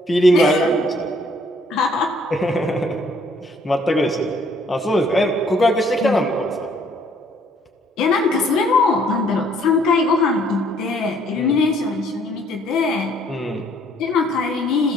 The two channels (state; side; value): normal; both; correlation 0.63